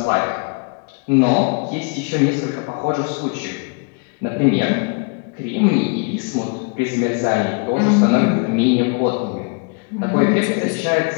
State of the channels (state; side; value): quieter; right; 36.5 dB